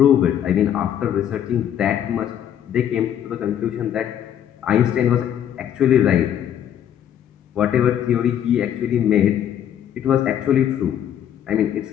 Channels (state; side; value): quieter; right; 10.0 dB